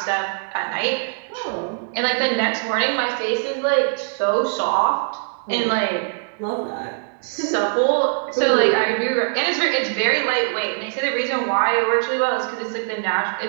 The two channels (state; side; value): silent; left; digital silence